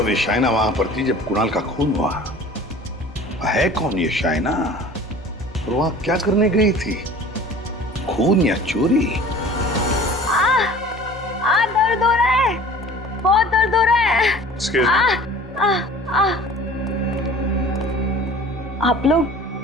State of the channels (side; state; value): both; normal; correlation 0.44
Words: ये शाइना वहां पर थी जब कुणाल का खून हुआ। है कौन ये शाइना और वहां क्या करने गई थी? खून या चोरी? दर्द हो रहा है, बहुत दर्द हो रहा है। आप लोग?